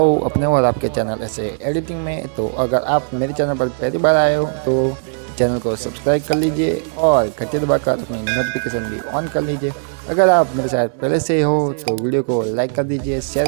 अपने और आपके चैनल ऐसे एडिटिंग में। तो अगर आप मेरे चैनल पर पहली बार आए हो तो चैनल को सब्सक्राइब कर लीजिए और घंटी दबाकर अपनी नोटिफिकेशन भी ऑन कर लीजिए। अगर आप मेरे साथ पहले से ही हो तो वीडियो को लाइक कर दीजिए,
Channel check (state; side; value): silent; left; 67 dB below the other